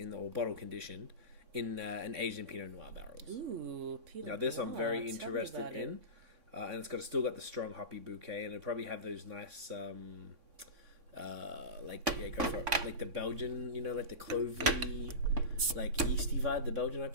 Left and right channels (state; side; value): late; left; 3.6 ms